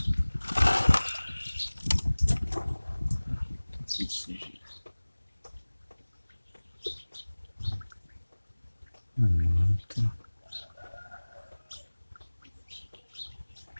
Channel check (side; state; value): both; inverted; correlation -1.00